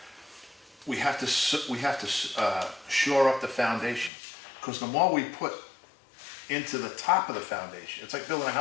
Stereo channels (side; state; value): right; drops out; at 4.1 s